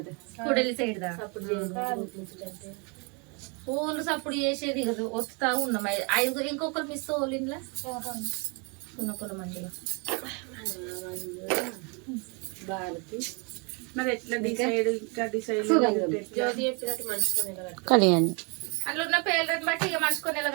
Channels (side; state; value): left; quieter; 33.0 dB